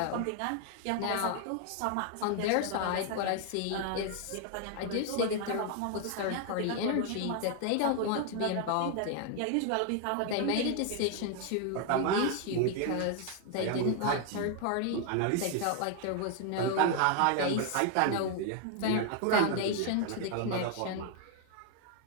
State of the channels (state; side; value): different; both; correlation 0.00